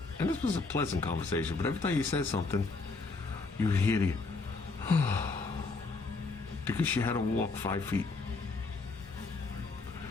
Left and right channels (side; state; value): right; quieter; 3.9 dB